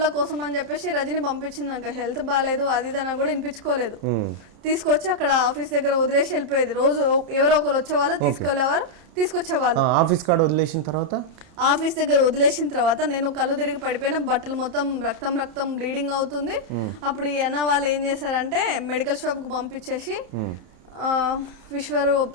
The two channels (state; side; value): late; left; 30 ms